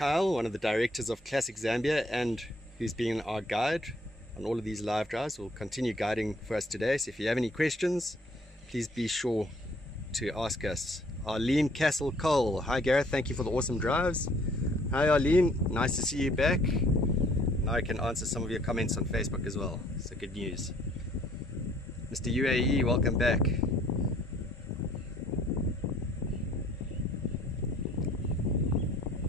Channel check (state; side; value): normal; both; correlation 0.60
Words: one of the directors of Classic Zambia and who's been our guide on all of these live drives, will continue guiding for us today. So if you have any questions, please be sure to ask us. Arlene Castle Cole, hi Gareth, thank you for the awesome drives. Hi Arlene, nice to see you back. Now I can answer some of your comments on Facebook as well, so good news. Mr. UAE, welcome back.